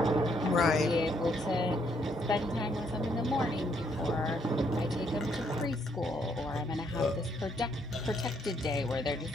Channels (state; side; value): normal; both; correlation 0.71